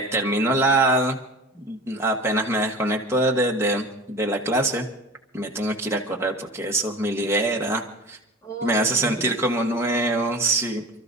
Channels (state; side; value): normal; both; correlation 0.35